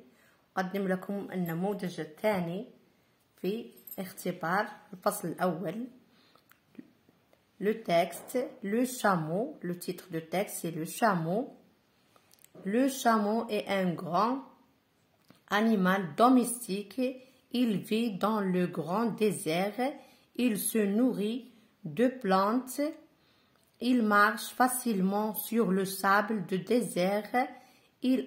أقدم لكم النموذج الثاني في اختبار الفصل الأول. Le texte, le chameau, le titre de texte c'est le chameau. Le chameau est un grand animal domestique. Il vit dans le grand désert. Il se nourrit de plantes. Il marche facilement sur le sable du désert. Il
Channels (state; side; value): identical; both; correlation 1.00